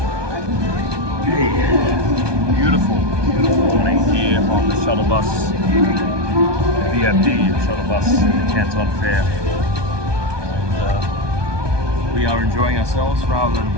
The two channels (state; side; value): late; left; 1.2 ms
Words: morning here on the shuttle bus, VFD shuttle bus at the Canton Fair. And we are enjoying ourselves rather than